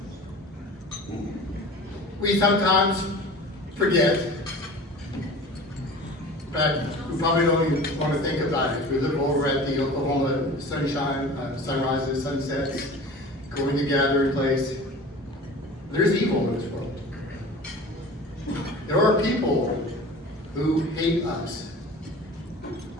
We sometimes forget, but we probably don't even want to think about it. We look over at the Oklahoma sunshine, sunrises, sunsets, going to gathering place. There's evil in this world. There are people who hate us.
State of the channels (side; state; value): both; normal; correlation 0.39